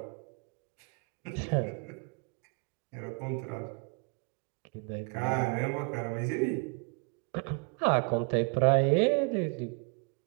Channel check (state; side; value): quieter; left; 34.9 dB